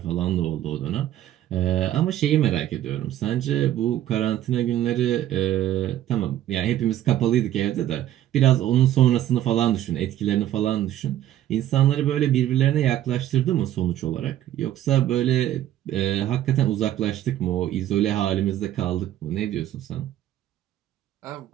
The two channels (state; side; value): quieter; left; 12.5 dB